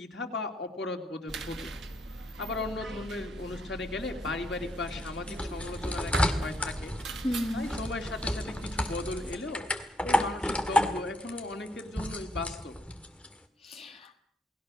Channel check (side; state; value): both; normal; correlation 0.72